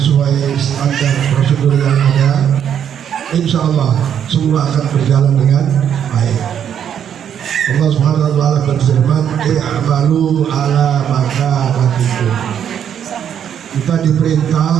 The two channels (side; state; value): left; quieter; 8.9 dB